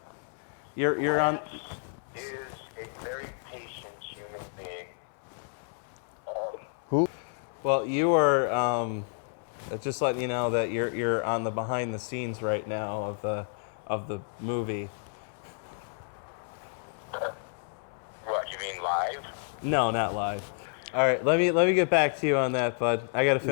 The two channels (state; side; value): silent; right; 58 dB below the other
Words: you're on. is a very patient human being. Who? Well, you are, just letting you know that you're on the behind the scenes right now of the movie. What, you mean live? No, not live. All right, let me get back to you on that, bud. I got to